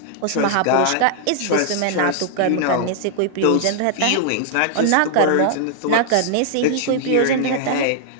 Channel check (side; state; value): both; different; correlation -0.01